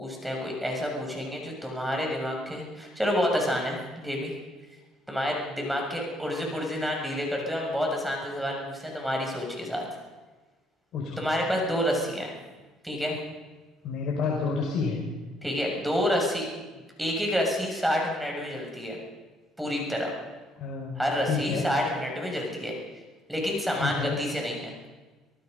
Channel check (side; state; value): both; normal; correlation 0.70